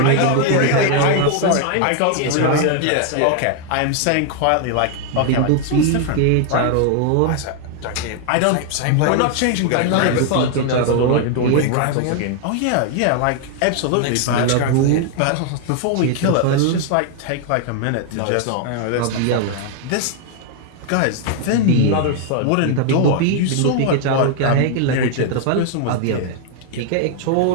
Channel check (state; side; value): different; both; correlation 0.00